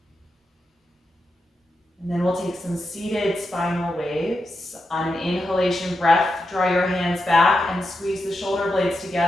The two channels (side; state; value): both; normal; correlation 0.87